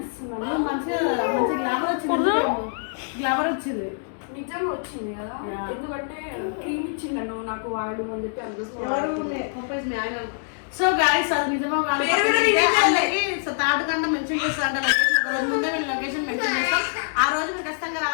మంచిగా గ్లామర్ వచ్చింది నిజంగా వచ్చింది కదా, ఎందుకంటే క్రీమ్ ఇచ్చిండను నాకు వాడు అని చెప్పి అందుకు. సో గాయస్ అది నిజమో థర్డ్ కంటే మెన్షన్ చేస్తారంట లొకేషన్. ఒక రోజు ముందే నేను లొకేషన్ మెన్షన్ చేస్తాం, ఆ రోజు మీరు ఖచ్చితంగా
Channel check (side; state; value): right; silent; 62 dB below the other